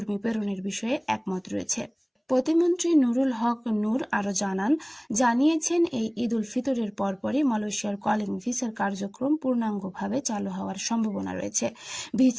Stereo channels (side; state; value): both; identical; correlation 1.00